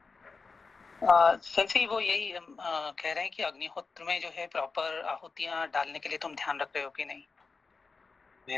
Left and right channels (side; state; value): right; quieter; 4.5 dB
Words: संजय वो यही कह रहे हैं कि अग्निहोत्र में जो है प्रॉपर आहुतियां डालने के लिए तुम ध्यान रख रहे हो कि नहीं?